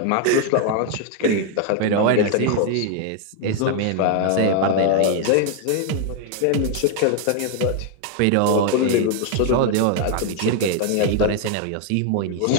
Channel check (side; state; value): both; different; correlation 0.00